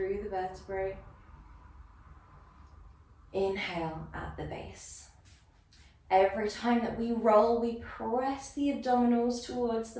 the vertebrae. Inhale at the base. Every time that we roll, we press the abdominals towards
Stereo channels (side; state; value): both; identical; correlation 1.00